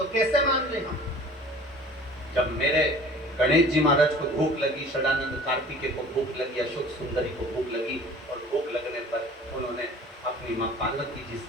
कैसे मान ले हम? जब मेरे गणेश जी महाराज को भूख लगी, षडानंद कार्तिकेय को भूख लगी, अशोक सुंदरी को भूख लगी, और भूख लगने पर उन्होंने अपनी माँ पार्वती जी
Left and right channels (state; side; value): normal; both; correlation 0.46